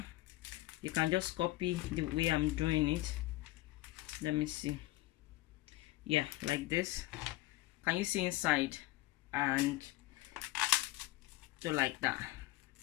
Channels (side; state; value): right; quieter; 18.1 dB